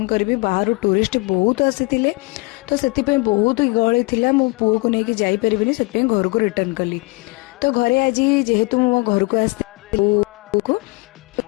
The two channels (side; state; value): right; quieter; 26.1 dB